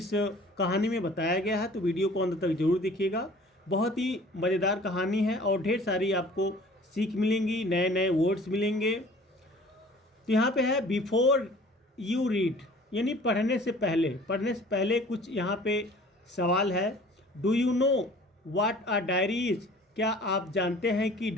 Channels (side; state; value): both; normal; correlation 0.48